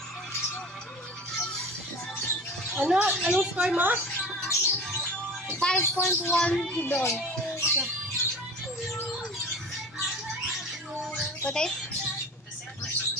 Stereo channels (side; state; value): both; normal; correlation 0.36